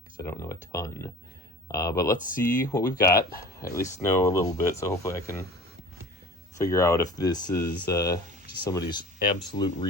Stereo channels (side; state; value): both; normal; correlation 0.41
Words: because I don't know a ton. But let's see what we've got. I at least know a little bit, so hopefully I can figure out if this is just somebody's absolute